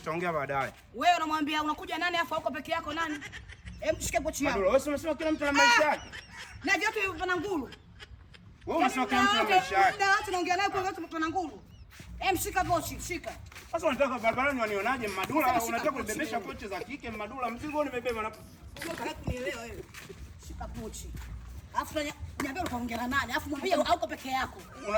baadaye. Wewe unamwambia unakuja nani afa uko peke yako nani? Hebu shike pochi yako. Wewe unasema kila mtu ana maisha yake. Na vyote vina nguru. Wewe unasema kila mtu ana maisha yake. Ndio watu naongea naye kwa watu vina nguru. Shika pochi, shika. Sasa unataka barabarani wanionaje Madula? Unataka kubebesha pochi za kike Madula? Mzigo nimebeba na unataka kunielewa wewe. Shika pochi. Alafu niambia utaongea na nani? Alafu mwambie hauko peke yako.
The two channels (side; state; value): both; identical; correlation 1.00